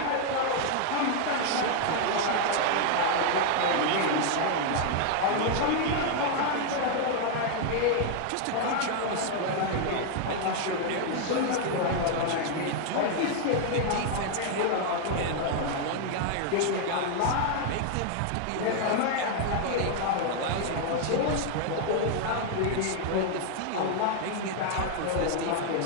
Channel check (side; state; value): both; different; correlation 0.00